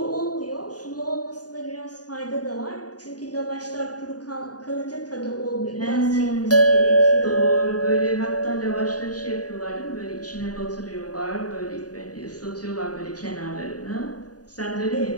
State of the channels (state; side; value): late; right; 0.68 ms